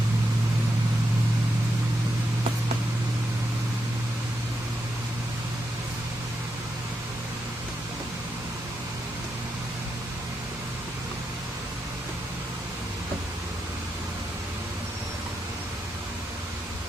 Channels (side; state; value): both; normal; correlation 0.84